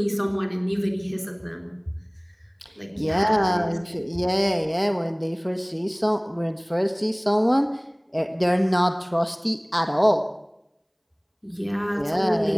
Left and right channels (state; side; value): identical; both; correlation 1.00